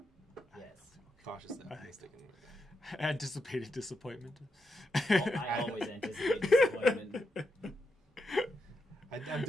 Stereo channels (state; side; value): normal; both; correlation 0.84